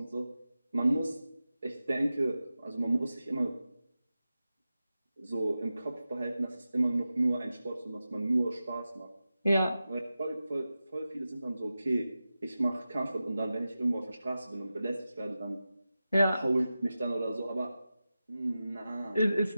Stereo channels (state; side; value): inverted; both; correlation -0.93